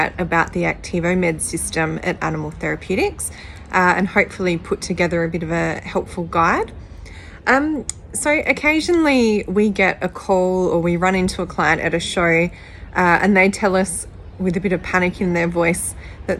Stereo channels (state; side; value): identical; both; correlation 1.00